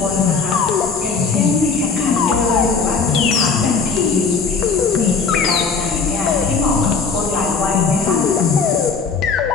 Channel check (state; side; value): quieter; right; 5.0 dB